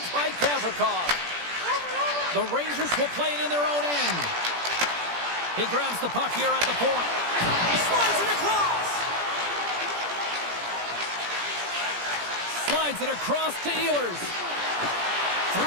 by Gavrikov. The Rangers will play it in their own end. He grabs the puck here at the point. Slides it across. Slides it across to Ehlers.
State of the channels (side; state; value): left; late; 17 ms